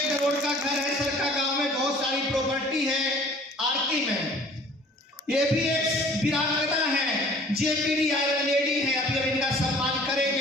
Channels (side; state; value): both; normal; correlation 0.51